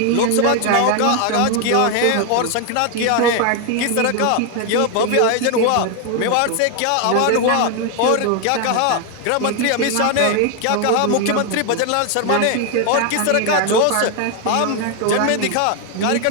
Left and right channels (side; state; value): both; different; correlation 0.01